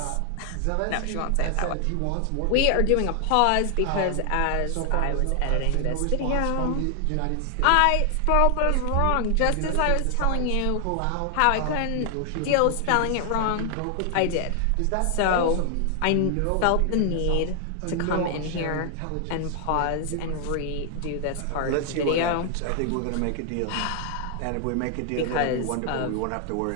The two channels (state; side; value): different; both; correlation 0.00